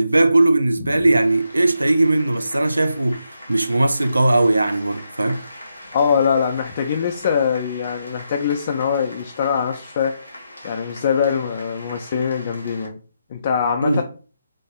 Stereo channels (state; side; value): inverted; both; correlation -0.83